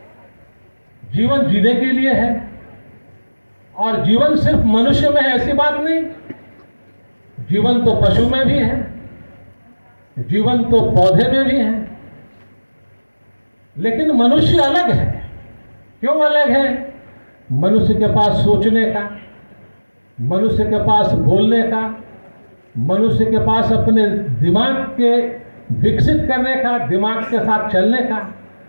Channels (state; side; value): inverted; both; correlation -1.00